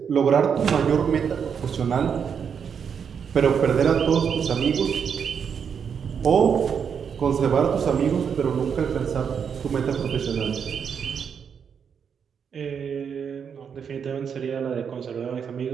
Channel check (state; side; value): quieter; left; 7.1 dB